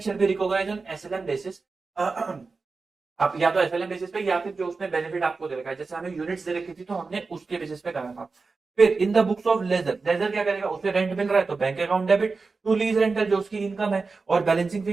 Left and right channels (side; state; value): left; quieter; 4.2 dB